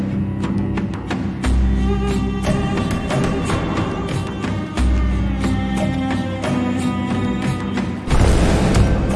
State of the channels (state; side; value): identical; both; correlation 1.00